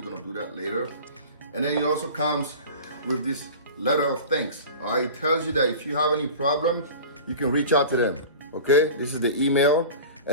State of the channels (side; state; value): both; inverted; correlation -0.37